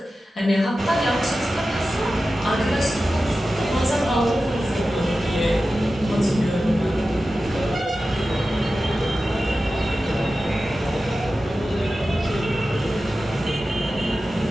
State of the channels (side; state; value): both; normal; correlation 0.94